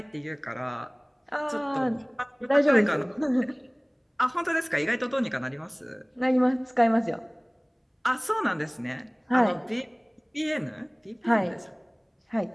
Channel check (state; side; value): identical; both; correlation 1.00